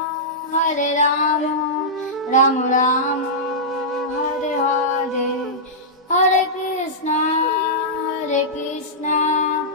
রাম রাম হরে হরে, হরে কৃষ্ণ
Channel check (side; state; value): both; normal; correlation -0.13